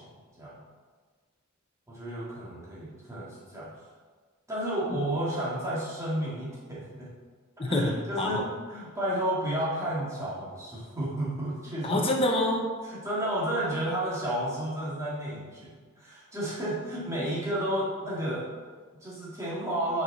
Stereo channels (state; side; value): normal; both; correlation 0.30